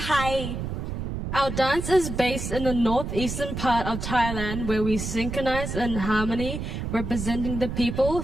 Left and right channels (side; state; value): right; noise; rumble, 5 dB below the sound